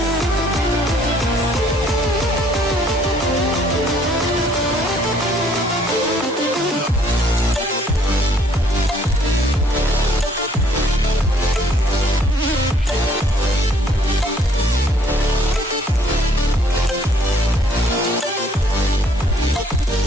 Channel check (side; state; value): both; normal; correlation 0.62